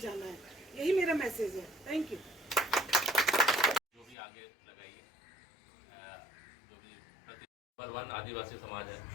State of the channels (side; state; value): right; drops out; at 4.2 s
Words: जाना है। यही मेरा मैसेज है। Thank you. जो भी आगे लगाइए, जो भी नंबर 1 आदिवासी समाज है।